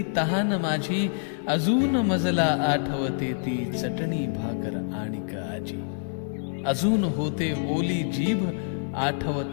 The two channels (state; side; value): silent; right; 61 dB below the other